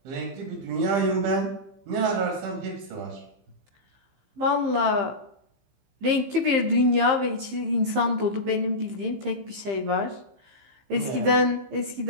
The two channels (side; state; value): left; late; 15 ms